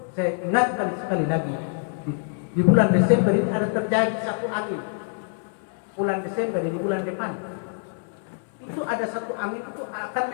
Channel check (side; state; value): right; silent; 59 dB below the other